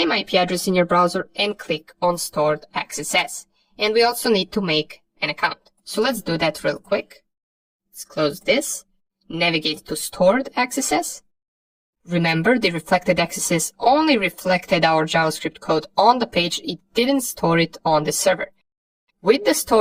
IP address in your browser and click on stored XSS. And we also need to make an account. So let's do that real quick. Let's close this, navigate to stored XSS. Remember, the reflected XSS only reflected our JavaScript code on the page, it didn't store it on the server. With the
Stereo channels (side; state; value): both; identical; correlation 1.00